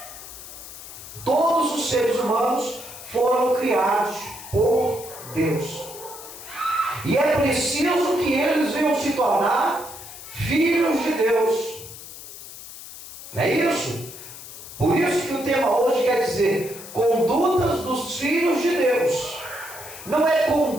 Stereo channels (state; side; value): noise; left; hiss, 14 dB below the sound